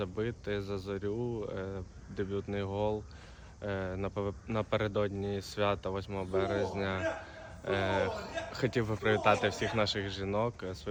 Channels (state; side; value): identical; both; correlation 1.00